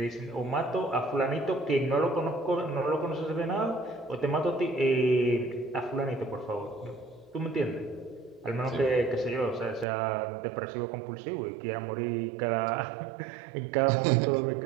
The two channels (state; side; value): drops out; left; at 9.9 s